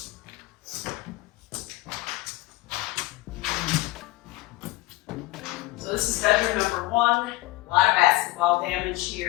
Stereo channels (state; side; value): quieter; right; 19.8 dB